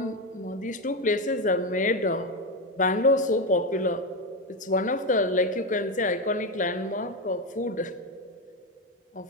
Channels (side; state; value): both; normal; correlation 0.11